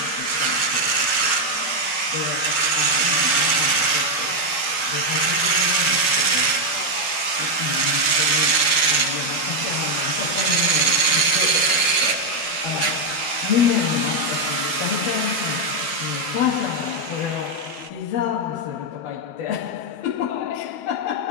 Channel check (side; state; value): right; late; 12 ms